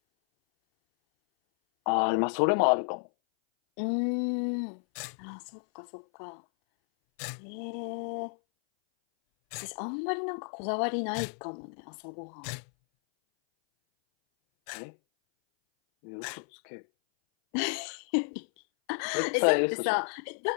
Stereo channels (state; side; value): silent; right; 57 dB below the other